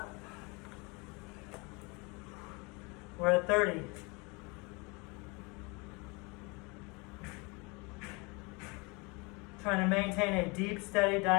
We're at 30. Trying to maintain a deep, steady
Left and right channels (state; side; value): quieter; right; 28.6 dB